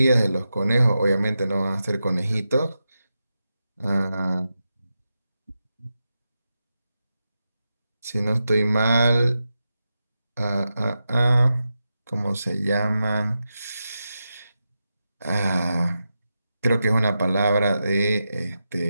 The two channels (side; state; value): both; inverted; correlation -0.89